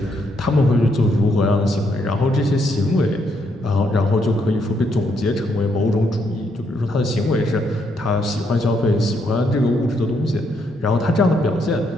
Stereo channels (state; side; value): normal; both; correlation 0.75